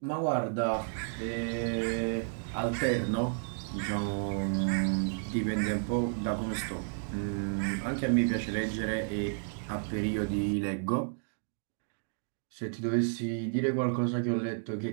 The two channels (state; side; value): silent; left; digital silence